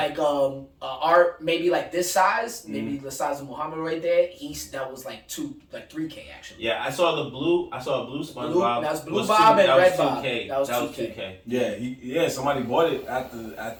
art maybe like this size, maybe the size of Muhammad right there. That was like 3K actually. Yeah, I saw a blue SpongeBob. That's Blue Bob and Red Bob. That was 2K. Yeah, somebody bought it at the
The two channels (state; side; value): identical; both; correlation 1.00